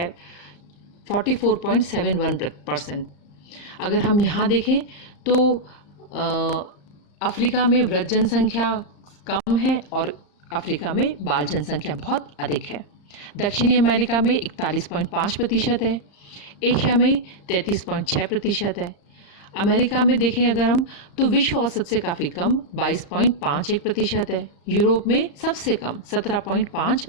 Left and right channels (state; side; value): late; right; 35 ms